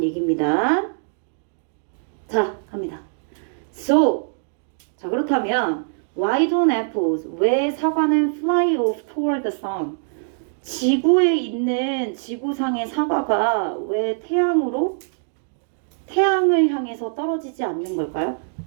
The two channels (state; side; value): silent; left; digital silence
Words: 얘기입니다. 자, 갑니다. So, 자 그렇다면 why don't apples? 왜 사과는 fly off toward the sun? 지구에 있는 지구상의 사과가 왜 태양을 향해서 떨어지지 않는 걸까요?